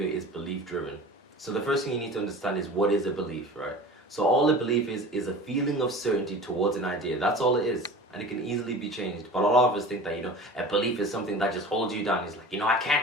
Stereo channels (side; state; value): both; normal; correlation 0.38